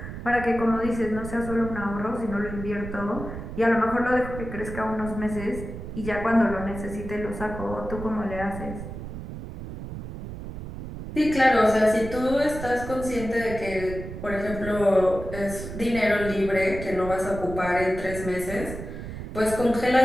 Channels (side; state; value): right; noise; rumble, 9 dB below the sound